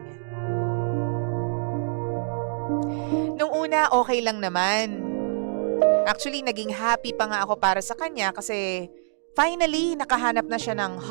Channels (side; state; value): left; silent; digital silence